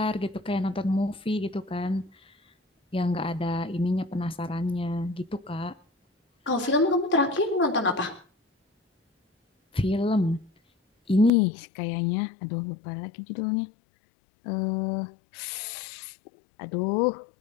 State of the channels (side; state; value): right; drops out; at 11.3 s